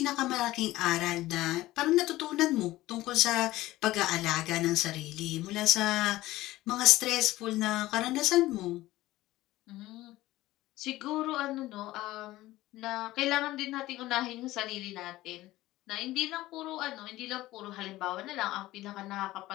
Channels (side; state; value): right; quieter; 16.9 dB